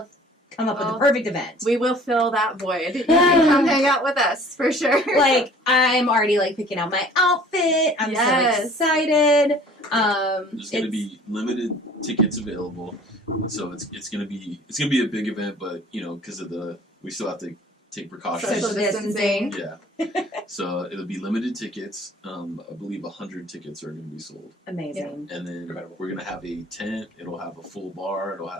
come up with the perfect event. We will fill that void. You can come hang out with us for sure. Like, I'm already like picking out my outfit. I'm Yes. so excited. There's going to be limited tickets available, so it's going to be a big event. But you know, because of we still have to take precautions. Social distancing. Yeah. So it'll be limited tickets. I believe 100 tickets are going to be sold. Amazing. And then Incredible. we're going to have a tent. It'll have a full bar. It'll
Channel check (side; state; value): both; normal; correlation 0.50